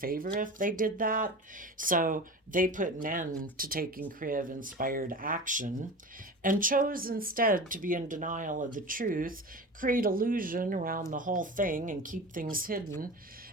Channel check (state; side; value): normal; both; correlation 0.32